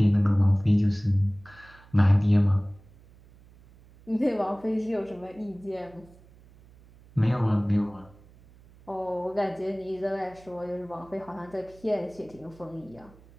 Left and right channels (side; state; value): right; noise; hum, 25 dB below the sound